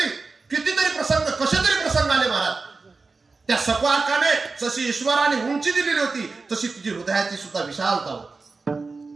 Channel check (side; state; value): left; quieter; 4.1 dB